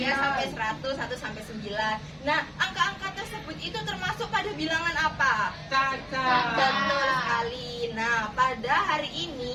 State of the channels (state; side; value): identical; both; correlation 1.00